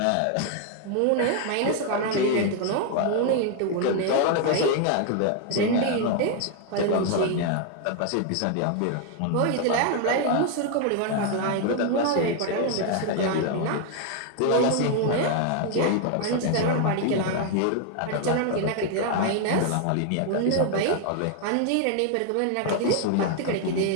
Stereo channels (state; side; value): different; both; correlation 0.00